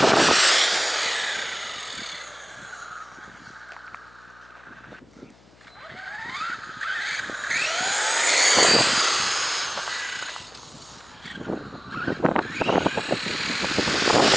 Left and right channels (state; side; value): noise; left; hum, 28 dB below the sound